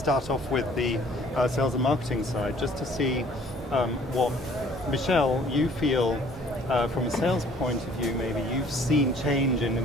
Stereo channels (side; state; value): both; normal; correlation 0.56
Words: off with the sales and marketing side, just to see what, Michelle, you feel from a sales point of view, maybe you've seen change in